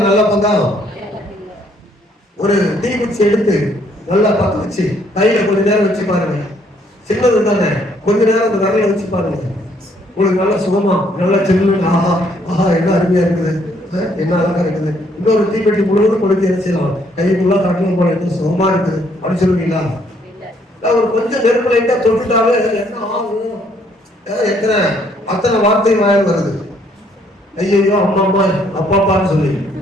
நல்ல பங்கா? ஒரு தீக்குச்சி எடுத்து நல்லா பத்த வச்சு கையில கொஞ்ச நேரம் வச்சு பாருங்க. சின்னது தானே, கொஞ்ச நேரம் அந்த விரல வச்சு பாருங்க. உங்களுக்கு நல்லா சுகமா நல்லா சின்ன ஆஹா என்ன அருமையா இருக்குது, என்ன அழகா இருக்குது. இன்னொரு தீப்பெட்டி முழுவதும் கொடுத்து என்ன செய்யலாம்? கைக்குள்ள காட்டணும் போல என்ன சுகமா இருக்குது அப்படின்னு சொல்லுவீங்களா? ஒரு கொஞ்சம் நெருப்பு லைட்டா தொட்டுட்டாவே என்ன ஆகும்? அத்தனை வார்த்தை வாயில் வருது. ஐயோ அம்மா அம்மா அப்பாப்பான்னு சொல்லி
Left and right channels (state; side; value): normal; both; correlation 0.67